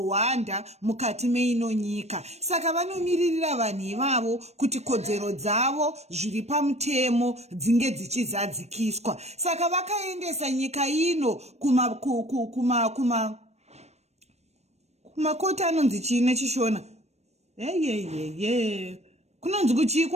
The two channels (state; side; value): late; left; 0.31 ms